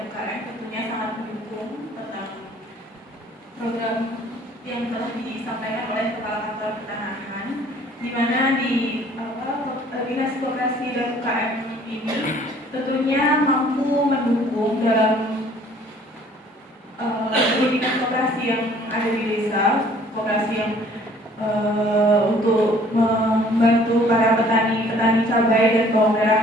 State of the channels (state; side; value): normal; both; correlation 0.56